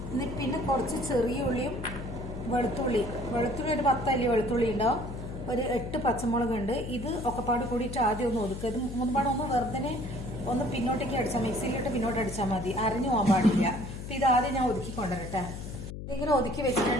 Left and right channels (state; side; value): noise; left; hum, 8 dB below the sound